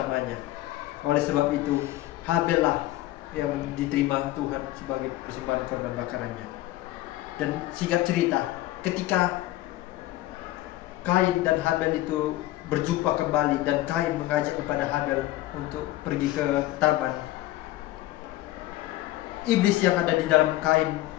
Oleh sebab itu, Habel lah yang diterima Tuhan sebagai persembahan korban bakarannya. Dan singkat cerita, ketika Kain dan Habel itu berjumpa kembali dan Kain mengajak kepada Habel untuk pergi ke taman, iblis yang ada di dalam Kain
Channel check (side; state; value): right; quieter; 16.0 dB